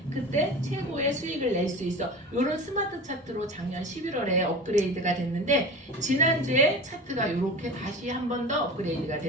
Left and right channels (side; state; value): both; normal; correlation 0.33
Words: 그때 최고의 수익을 낼 수 있어. 이런 스마트 차트로 작년 11월에 업그레이드가 됐는데 지난주에 차트가 이렇게 다시 한 번 더 업그레이드가